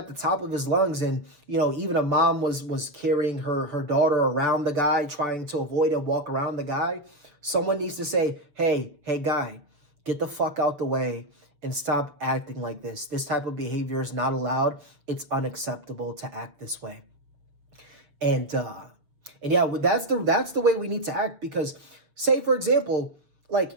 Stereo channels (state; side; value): late; left; 6.8 ms